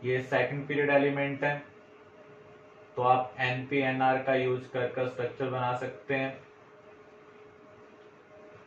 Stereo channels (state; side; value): identical; both; correlation 1.00